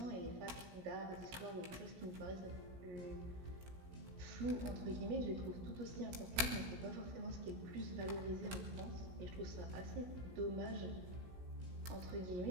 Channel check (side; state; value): left; late; 16 ms